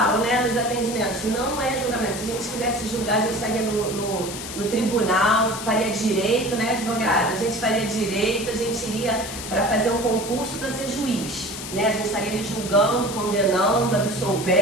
né, nos atendimentos, não é julgamento. Se a gente quisesse julgar, a gente estaria no tribunal, faria direito, né, advogada? A gente faria direito, a gente iria para fazer um concurso para ser juiz, né? A gente estaria ali julgando, condenando,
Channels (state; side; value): noise; left; hiss, 9 dB below the sound